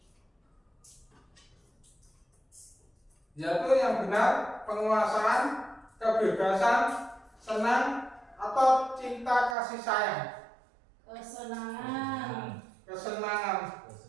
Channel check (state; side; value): drops out; left; at 9.6 s